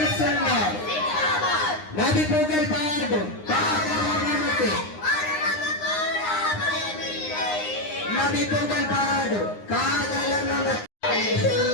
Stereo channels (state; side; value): late; right; 9.7 ms